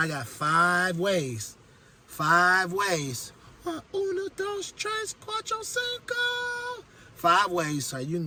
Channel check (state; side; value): identical; both; correlation 1.00